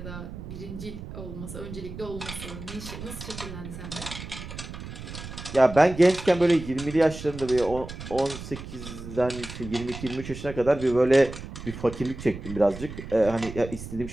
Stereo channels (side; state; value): right; noise; rumble, 11 dB below the sound